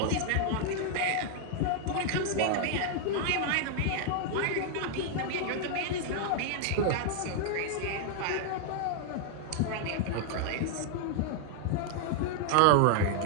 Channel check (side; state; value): both; different; correlation 0.00